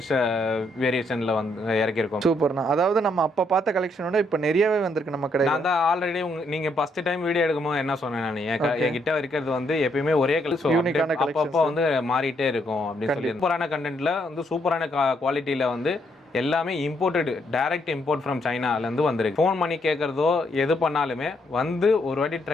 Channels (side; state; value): both; normal; correlation 0.74